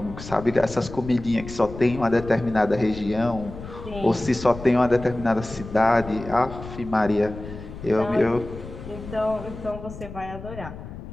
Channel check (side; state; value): left; noise; rumble, 12 dB below the sound